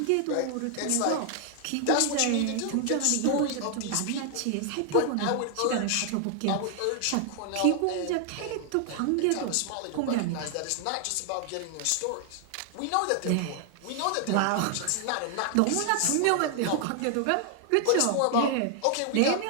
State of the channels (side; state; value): both; different; correlation 0.00